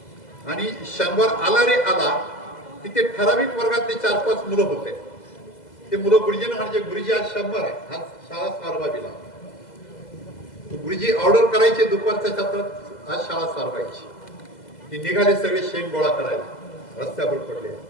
आणि शनिवार आला रे आला, तिथे ठराविक वर्गातले 4-5 मुलं होते. ते मुलं गुरुजींना म्हणजे, गुरुजी आज शनिवार आहे, आज शाळा सारवावी लागली. गुरुजी ऑर्डर करायचे दुपारच्या सत्रात, आज शाळा सारवायची. ती निघाले सगळे शेण गोळा करायला, रस्त्यावर पडले.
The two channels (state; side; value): late; right; 2.0 ms